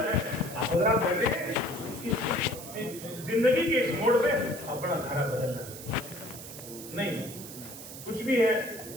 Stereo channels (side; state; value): right; noise; hiss, 12 dB below the sound